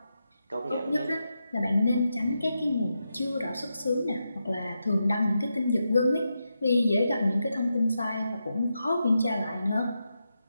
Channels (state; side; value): inverted; both; correlation -0.87